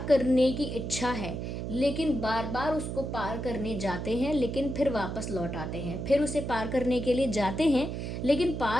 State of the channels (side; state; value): right; noise; hum, 5 dB below the sound